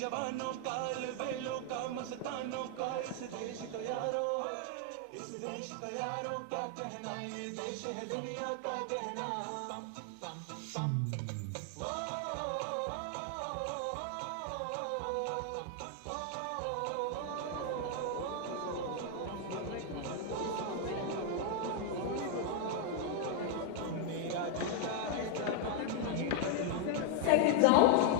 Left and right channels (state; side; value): different; both; correlation 0.00